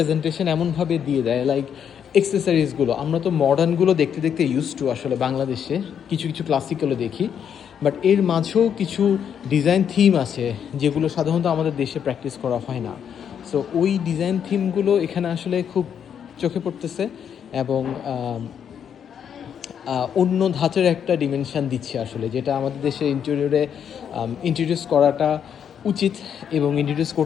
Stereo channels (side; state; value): right; quieter; 8.2 dB